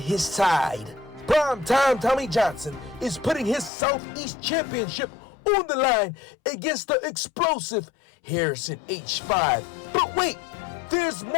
side. Primetime Tommy Johnson is putting his Southeast Championship on the line against the explosive Harrison H5. But wait, there's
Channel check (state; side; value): drops out; right; at 3.7 s